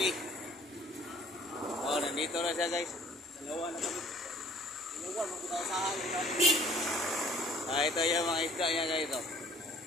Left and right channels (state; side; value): normal; both; correlation 0.54